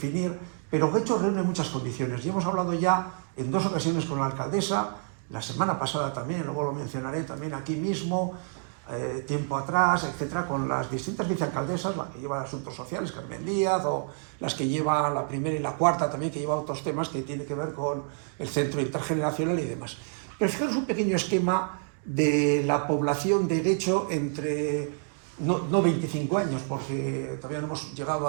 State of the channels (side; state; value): left; silent; 55 dB below the other